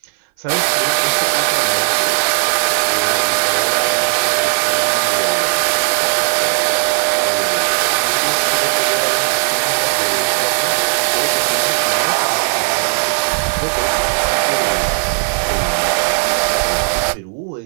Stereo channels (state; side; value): silent; left; 58 dB below the other